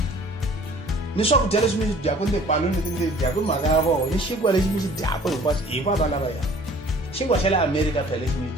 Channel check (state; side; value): normal; both; correlation 0.51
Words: ni swakudya leswi mi swi dyaka ni tipaloni leti mi ti dyaka hi mhaka ya vona ni xinkwa lexi mi xi dyaka hinkwaswo hi va lavaya. Xinkwa xa le America phela lexi mi